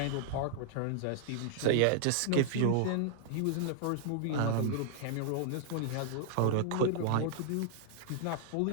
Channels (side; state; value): both; different; correlation -0.01